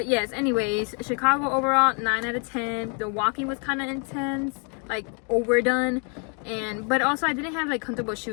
yes, anyways, Chicago overall 9 out of 10. The walking was kind of intense, like overdone. But also I didn't have like comfortable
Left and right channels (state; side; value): quieter; right; 38.0 dB